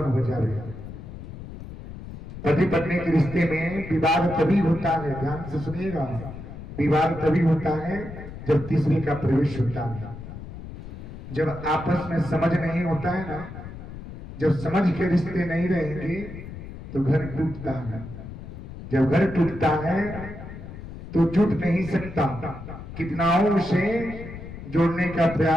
हो जाए। पति पत्नी के रिश्ते में विवाद तभी होता है, ध्यान से सुनिएगा, विवाद तभी होता है जब तीसरे का प्रवेश होता है। जब आपस में समझ नहीं होता है ना, जब समझ के रिश्ते नहीं रहेंगे तो घर टूटता है। जब घर टूटता है तो जुट नहीं सकता। कितनाओं से जोड़ने का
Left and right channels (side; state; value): left; noise; rumble, 12 dB below the sound